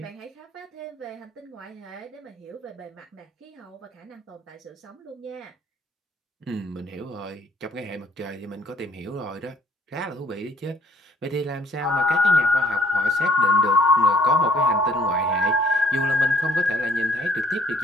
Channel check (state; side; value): normal; both; correlation 0.61